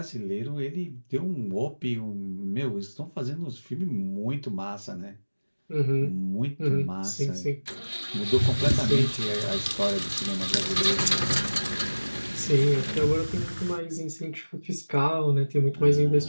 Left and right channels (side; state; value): both; inverted; correlation -1.00